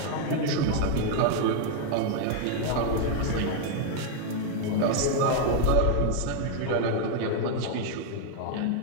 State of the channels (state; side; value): different; both; correlation 0.00